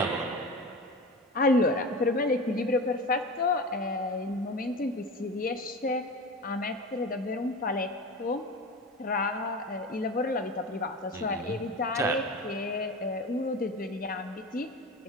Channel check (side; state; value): both; normal; correlation 0.30